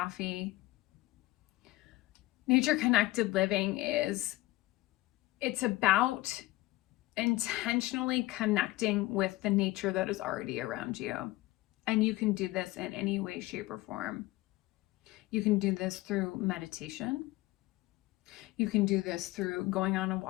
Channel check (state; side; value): quieter; right; 18.9 dB